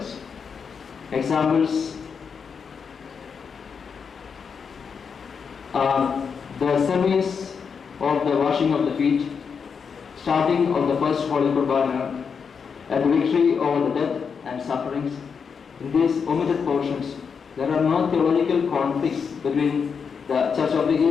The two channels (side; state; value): right; quieter; 6.2 dB